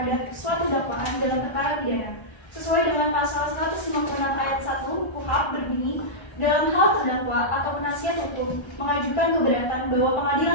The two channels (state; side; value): late; right; 1.3 ms